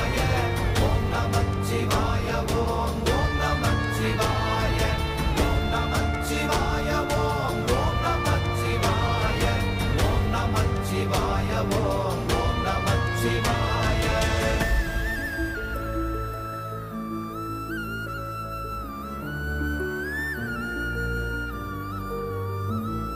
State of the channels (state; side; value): identical; both; correlation 1.00